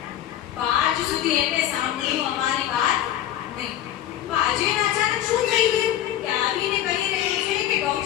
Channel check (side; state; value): right; quieter; 11.8 dB